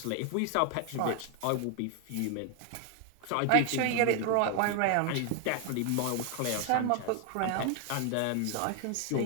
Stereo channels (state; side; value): different; both; correlation 0.00